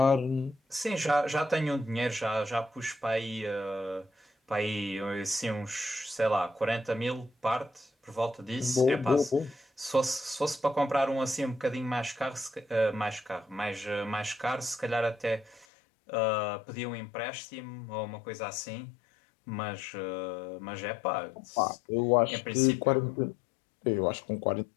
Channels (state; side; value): drops out; right; at 15.7 s